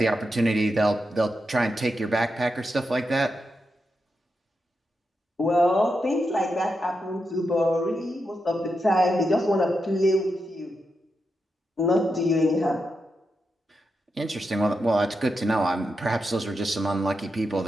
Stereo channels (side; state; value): both; normal; correlation 0.86